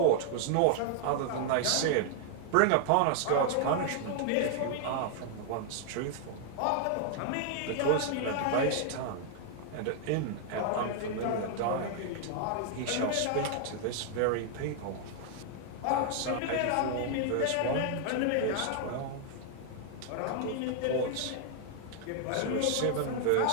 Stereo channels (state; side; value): different; both; correlation 0.00